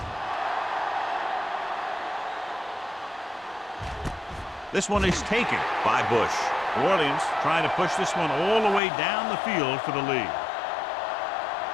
This one is taken by Bush. New Orleans trying to push this one all the way down the field for the lead.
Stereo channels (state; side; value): drops out; right; at 8.8 s